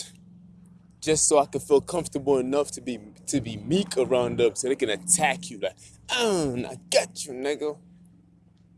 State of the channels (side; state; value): both; identical; correlation 1.00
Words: just so I can feel comfortable enough to be meek around them so they can attack you like, I got you, nigga.